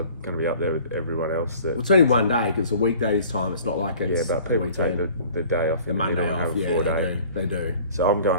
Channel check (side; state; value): both; inverted; correlation -0.49